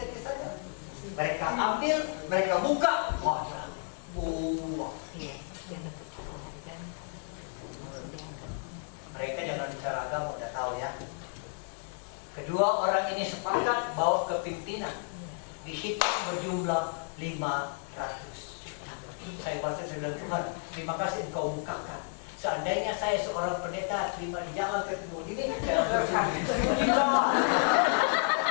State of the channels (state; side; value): silent; right; 57 dB below the other